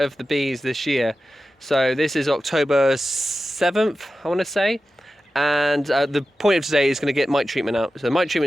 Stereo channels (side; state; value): both; normal; correlation 0.93